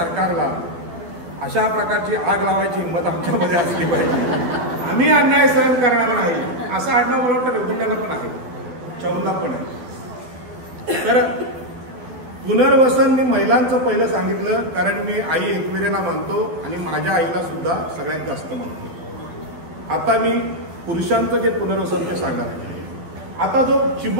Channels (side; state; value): left; late; 12 ms